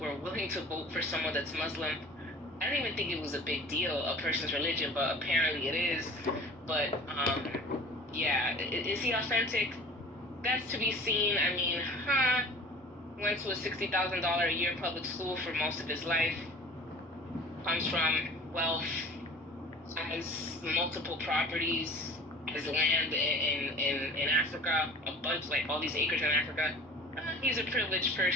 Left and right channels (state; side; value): normal; both; correlation 0.42